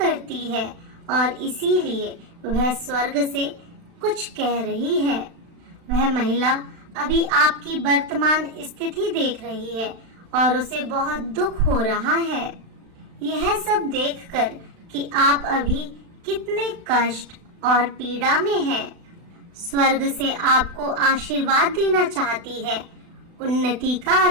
है और इसीलिए वह स्वर्ग से कुछ कह रही है। वह महिला अभी आपकी वर्तमान स्थिति देख रही है और उसे बहुत दुख हो रहा है। यह सब देखकर कि आप अभी कितने कष्ट और पीड़ा में हैं। स्वर्ग से आपको आशीर्वाद देना चाहती है, उन्नति का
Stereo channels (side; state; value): left; late; 36 ms